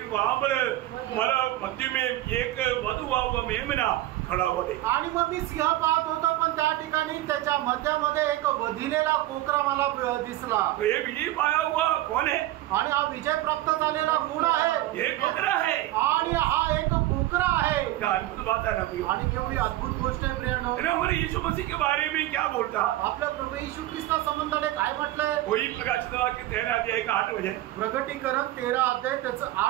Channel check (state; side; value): quieter; left; 15.6 dB